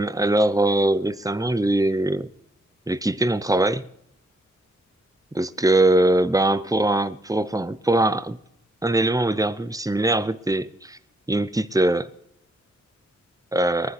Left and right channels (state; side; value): normal; both; correlation 0.72